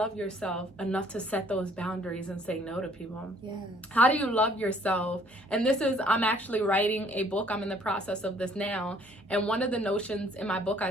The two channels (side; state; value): both; normal; correlation 0.60